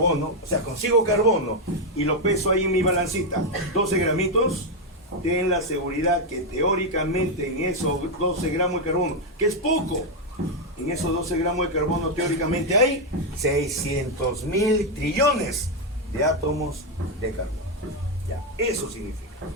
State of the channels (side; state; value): both; normal; correlation 0.03